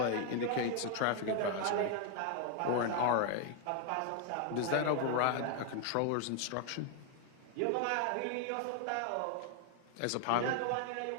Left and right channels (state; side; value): different; both; correlation 0.00